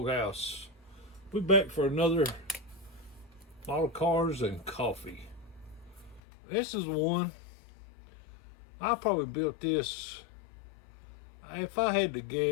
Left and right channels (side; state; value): right; drops out; at 6.2 s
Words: We're back for another model cars and coffee. This is one. I probably built this, if I had to